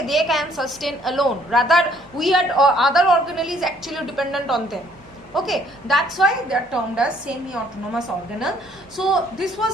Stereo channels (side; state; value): both; normal; correlation 0.62